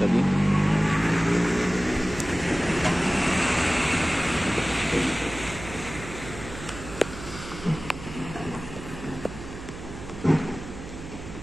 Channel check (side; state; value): right; noise; hum, 12 dB below the sound